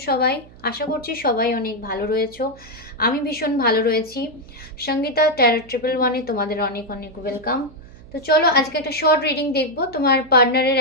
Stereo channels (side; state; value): right; noise; hum, 22 dB below the sound